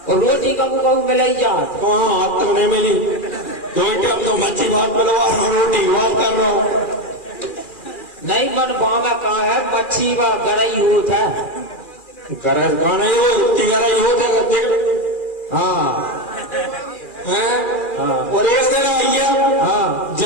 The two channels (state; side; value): late; right; 2.4 ms